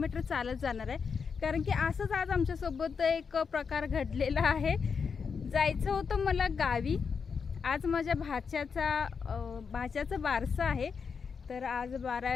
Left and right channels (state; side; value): quieter; right; 5.9 dB